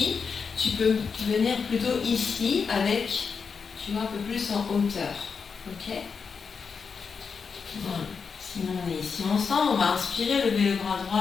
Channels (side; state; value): right; quieter; 5.7 dB